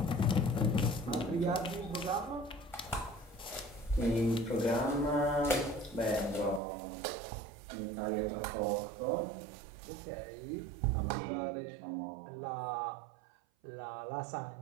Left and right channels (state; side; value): drops out; left; at 6.6 s